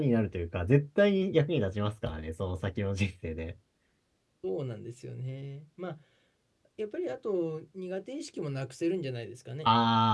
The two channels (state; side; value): identical; both; correlation 1.00